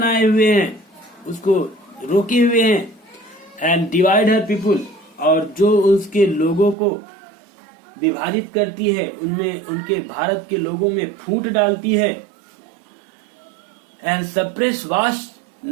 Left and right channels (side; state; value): left; drops out; at 6.8 s